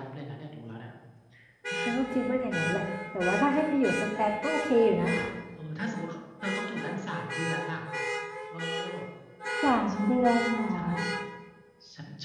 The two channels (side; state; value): both; identical; correlation 1.00